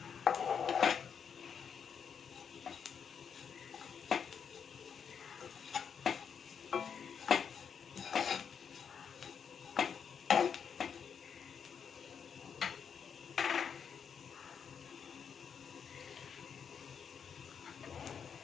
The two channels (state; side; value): quieter; right; 7.1 dB